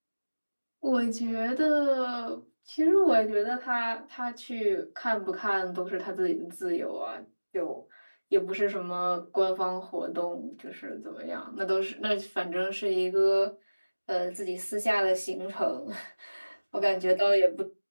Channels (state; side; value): inverted; both; correlation -1.00